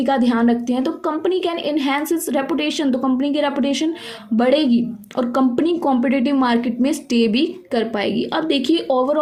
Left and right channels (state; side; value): identical; both; correlation 1.00